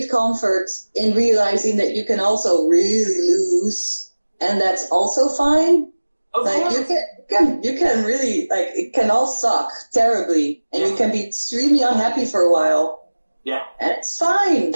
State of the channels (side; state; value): both; inverted; correlation -1.00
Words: comfort in realizing that you can also really lose, and that's also fine? Like you can really, like, it can all suck terribly, and you can be extremely unhappy for a while. Yeah. And it's fine.